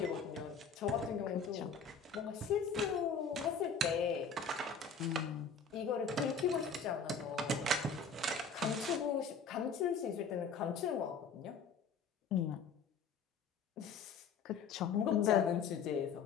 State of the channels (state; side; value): quieter; right; 5.3 dB